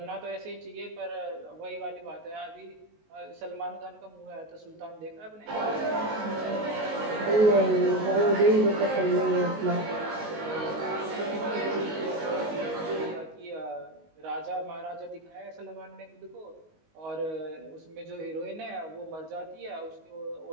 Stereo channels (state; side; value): late; left; 19 ms